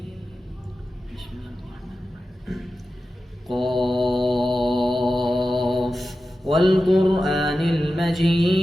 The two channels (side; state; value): both; normal; correlation 0.93